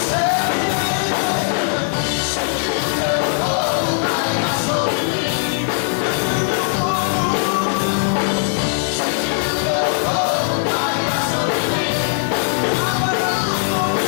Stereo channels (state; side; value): silent; right; 65 dB below the other